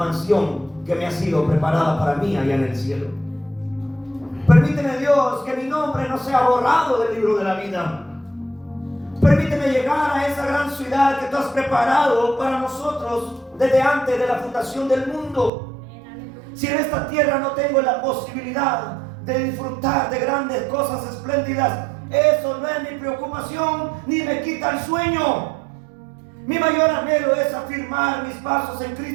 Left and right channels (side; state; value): left; drops out; at 15.5 s